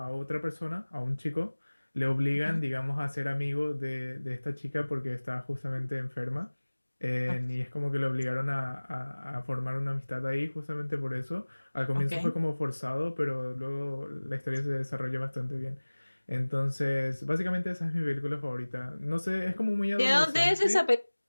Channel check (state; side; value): inverted; both; correlation -1.00